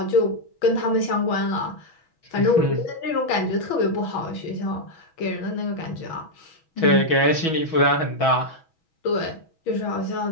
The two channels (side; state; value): right; late; 6.2 ms